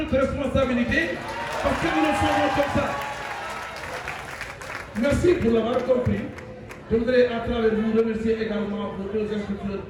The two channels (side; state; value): both; identical; correlation 1.00